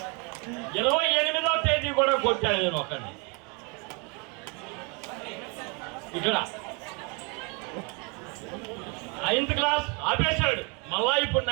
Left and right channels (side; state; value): left; quieter; 32.4 dB